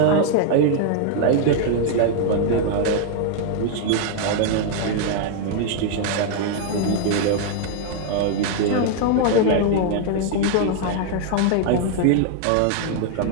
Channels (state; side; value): different; both; correlation 0.00